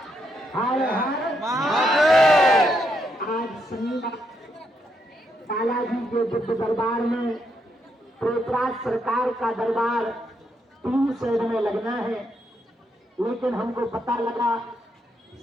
आज शनिवार बालाजी के दिव्य दरबार में प्रेतराज सरकार का दरबार 3 शेड में लगना है, लेकिन हमको पता लगा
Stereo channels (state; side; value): normal; both; correlation 0.78